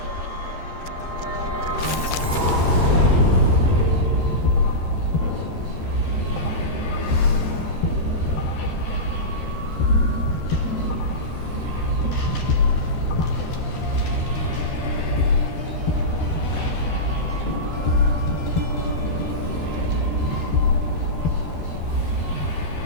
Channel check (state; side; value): late; right; 13 ms